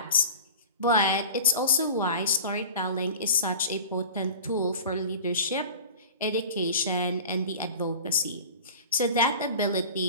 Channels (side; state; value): both; inverted; correlation -0.38